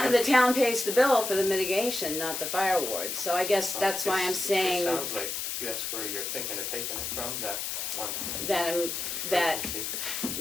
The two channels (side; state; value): left; noise; hiss, 3 dB below the sound